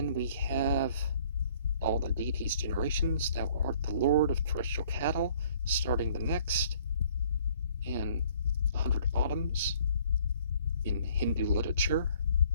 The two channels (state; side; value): inverted; both; correlation -0.58